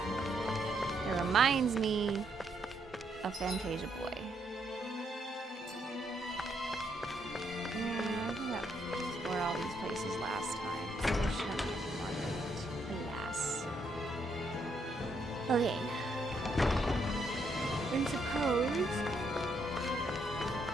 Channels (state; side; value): normal; both; correlation 0.75